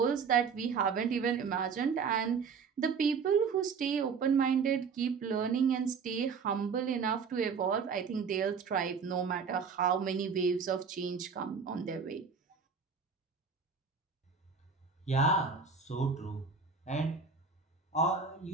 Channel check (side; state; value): left; quieter; 5.6 dB